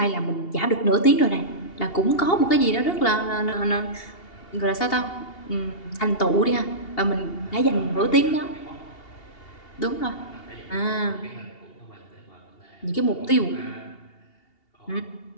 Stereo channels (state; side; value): late; right; 2.8 ms